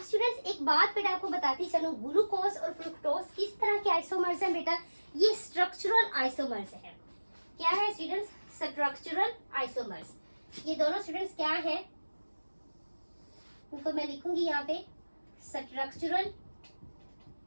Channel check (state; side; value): inverted; both; correlation -1.00